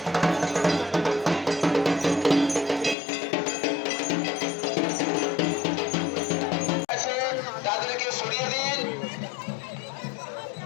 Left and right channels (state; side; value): drops out; right; at 3.0 s